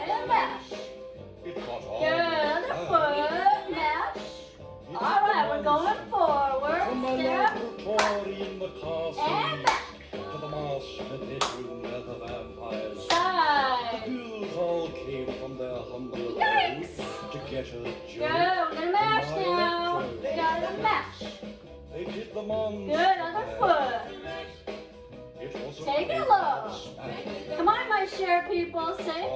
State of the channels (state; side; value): identical; both; correlation 1.00